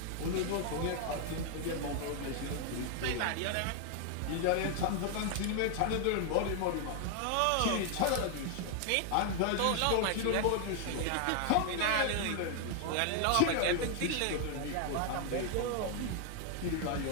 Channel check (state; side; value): different; both; correlation 0.00